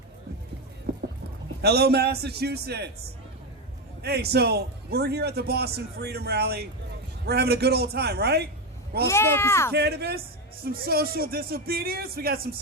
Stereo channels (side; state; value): both; normal; correlation 0.11